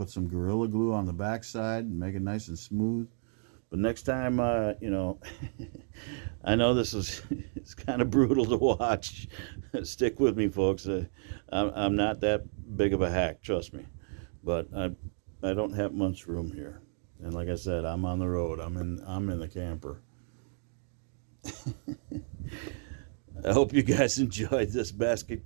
some Gorilla Glue on the backside and make it nice and smooth. But next time, you know, I know this is it's kind of brutal to watch. Stick with me, folks. I'm not that big of a hack, trust me. But I don't have much room here, and like I said, I'm on the road. I'm in the camper. I hope you guys enjoyed this basket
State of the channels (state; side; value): silent; left; 57 dB below the other